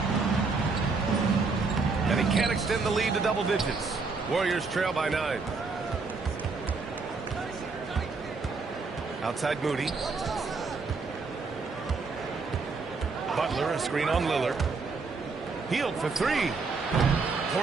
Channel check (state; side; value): quieter; left; 4.3 dB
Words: And he can't extend the lead to double digits. Warriors trail by 9. Outside Moody. Butler, a screen on Lillard. Healed for 3.